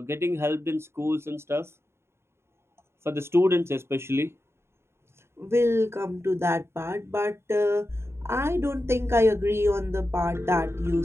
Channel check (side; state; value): left; late; 0.12 ms